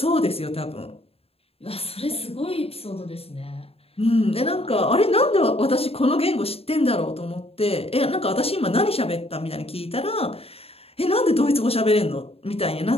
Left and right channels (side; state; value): right; late; 0.28 ms